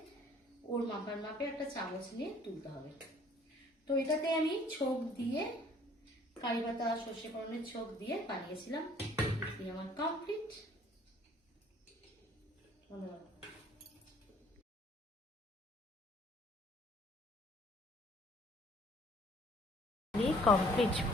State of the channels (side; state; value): both; normal; correlation 0.57